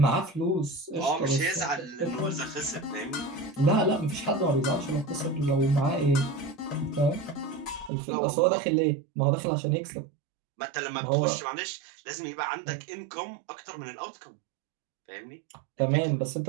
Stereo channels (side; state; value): left; drops out; at 7.9 s